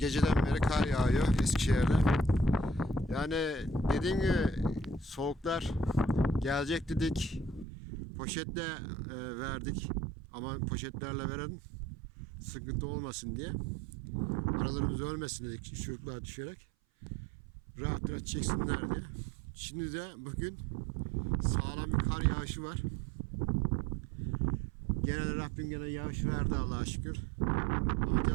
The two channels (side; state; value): left; drops out; at 7.7 s